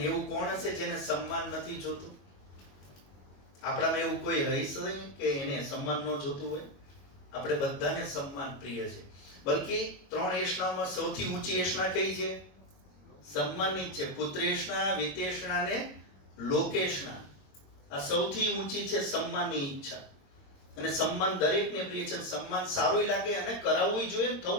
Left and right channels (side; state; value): right; late; 22 ms